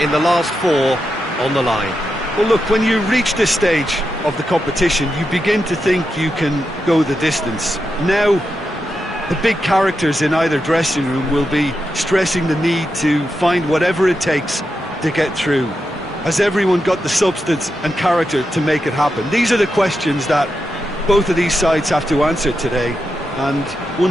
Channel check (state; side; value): normal; both; correlation 0.87